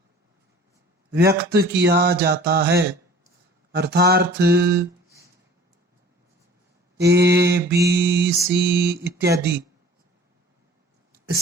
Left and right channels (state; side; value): normal; both; correlation 0.47